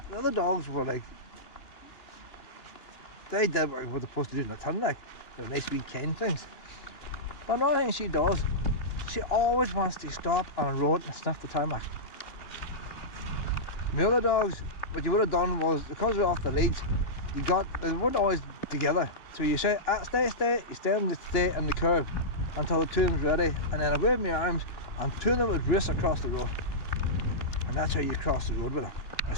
other dogs were like, they did what they're supposed to do in the ton, like they're nice wee kind things. But another thing she does, she always wants to stop on a road and sniff the tarmac. My other dogs, what you would have done was, because we're off the leads, they weren't always together. So you say, stay, you stay in the curve until the two of them's ready, and then I wave my arms and two of them would race across the road. And that's how you cross the road with them. I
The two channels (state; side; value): late; right; 2.9 ms